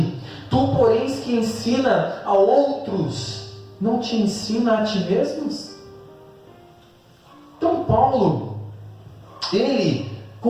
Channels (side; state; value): both; identical; correlation 1.00